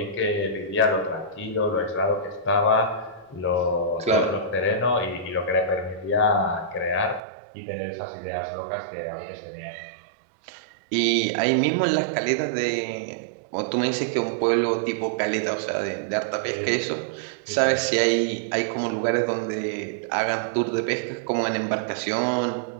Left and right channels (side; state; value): left; drops out; at 7.2 s